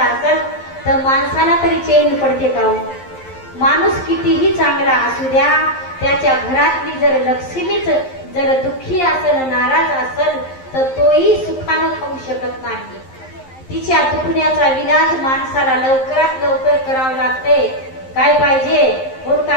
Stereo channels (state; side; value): late; right; 11 ms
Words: असेल तर माणसाला तरी चैन पडते का. माणूस कितीही चांगला असू द्या, त्याच्या घरातली जर लक्ष्मीच जर दुःखी असेल, नाराज असेल तर तोही सुखानं खाऊ शकत नाही. तिच्या दुखण्याचा विलाज माणसाला लवकरात लवकर करावं लागते. काय पाहिजे, कोण